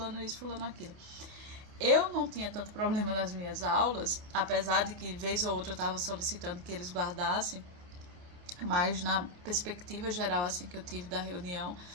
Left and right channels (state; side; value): late; left; 28 ms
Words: isso, fulano aquilo. Eu não tinha tanto problema nas minhas aulas, apesar de que vez ou outra eu estava solicitando que eles guardassem, mas na perspectiva geral assim que eu tive da reunião